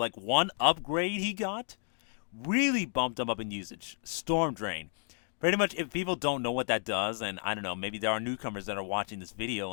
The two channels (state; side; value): silent; right; 56 dB below the other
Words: one upgrade he got really bumped him up in usage. Storm Drain. Pretty much, if people don't know what that does, and I don't know, maybe there are newcomers that are watching this